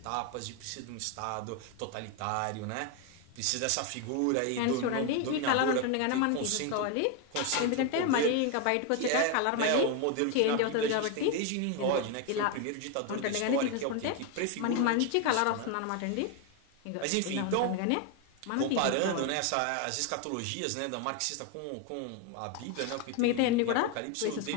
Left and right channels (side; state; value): both; different; correlation 0.01